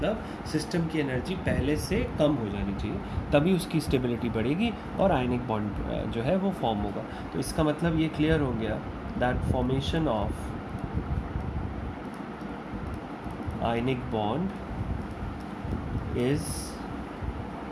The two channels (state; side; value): identical; both; correlation 1.00